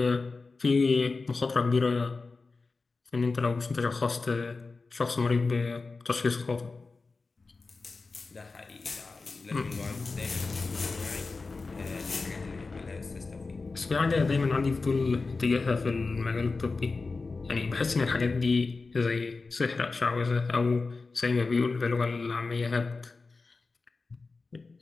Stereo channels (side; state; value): right; quieter; 4.0 dB